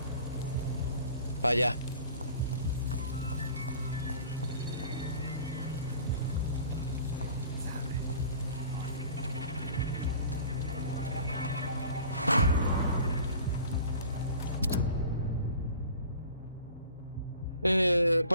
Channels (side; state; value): both; inverted; correlation -0.44